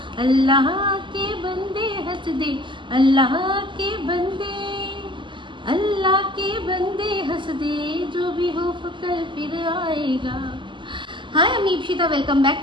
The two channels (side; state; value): left; late; 0.24 ms